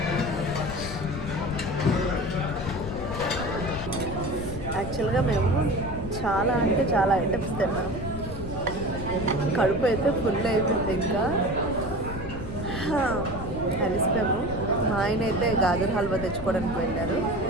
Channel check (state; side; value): noise; left; rumble, 9 dB below the sound